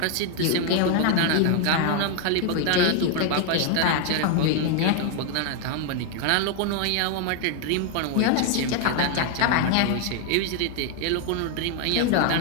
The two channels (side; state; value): both; different; correlation 0.00